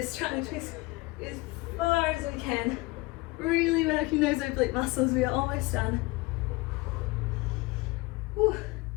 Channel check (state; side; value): quieter; right; 22.7 dB